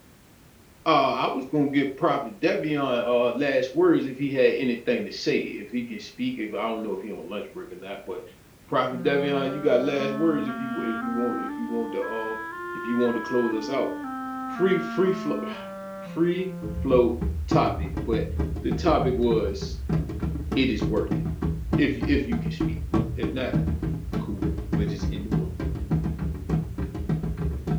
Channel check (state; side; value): identical; both; correlation 1.00